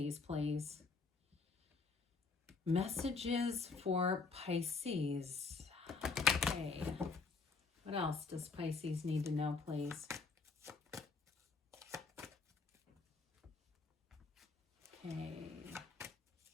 please. Messages for Pisces. Okay. What else does Pisces need to know, please? Okay.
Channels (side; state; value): right; quieter; 4.3 dB